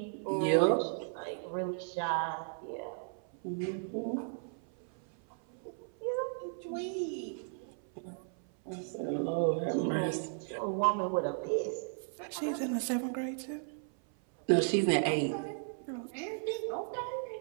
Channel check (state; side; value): silent; left; 54 dB below the other